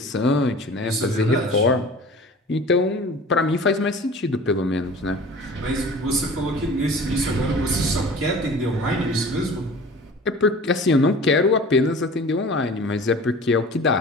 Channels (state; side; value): normal; both; correlation 0.42